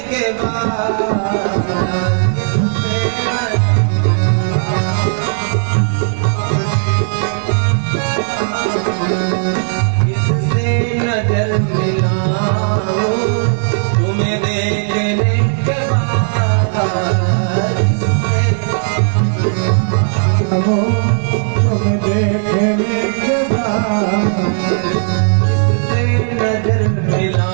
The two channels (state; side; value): silent; left; digital silence